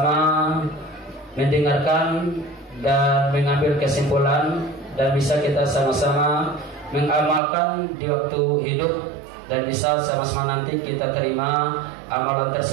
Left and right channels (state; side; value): drops out; left; at 7.4 s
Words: mendengarkan dan mengambil kesimpulan dan bisa kita sama-sama mengamalkan di waktu hidup dan bisa sama-sama nanti kita terima amalan